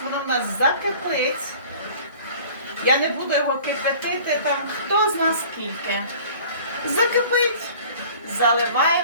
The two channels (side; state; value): both; inverted; correlation -0.47